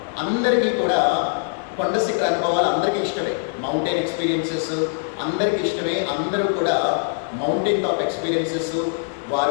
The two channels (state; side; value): silent; right; digital silence